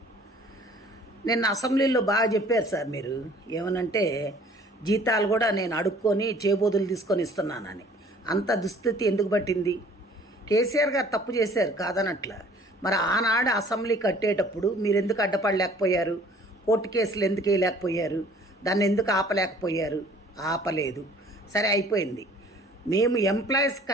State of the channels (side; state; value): both; normal; correlation 0.53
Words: నిన్న అసెంబ్లీలో బాగా చెప్పారు సార్. మీరు ఏమనంటే జీతాలు కూడా నేను అడుక్కొని చేబోదులు తీసుకొని ఇస్తున్నానని. అంత దుస్థితి ఎందుకు పట్టింది? కేసీఆర్ గారు తప్పు చేశారు కాదనట్ల. మరి ఆనాడు అసెంబ్లీ కట్టేటప్పుడు మీరు ఎందుకు అడ్డపడలేకపోయారు? కోర్టు కేసులు ఎందుకు వేయలేకపోయారు? దాన్ని ఎందుకు ఆపలేకపోయారు? ఆపలేదు. సరే అయిపోయింది. మేము ఎంప్లాయీస్